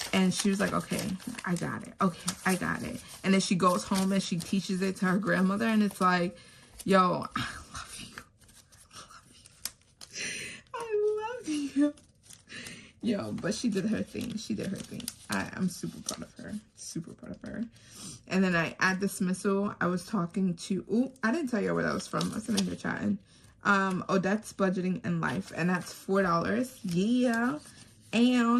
And she was like, okay, I got it. Okay, I got it. And then she goes home and she teaches it to her grandmother. And it's like, yo, I love you. I love you. Yo, but she did her thing. She did her thing. I'm super proud of her. Super proud of her. And then at dismissal, I was talking to, ooh, I didn't tell you where that was from. I was in here chatting. Odette's Budgeting in Life. And that's $4. Yeah.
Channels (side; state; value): both; identical; correlation 1.00